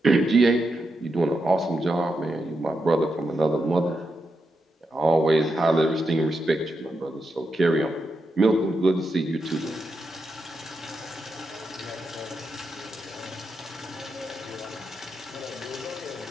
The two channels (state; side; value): normal; both; correlation 0.85